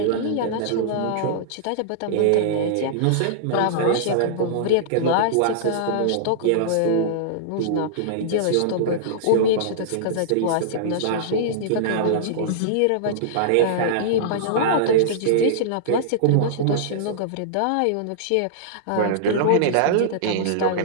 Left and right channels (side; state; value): both; different; correlation -0.02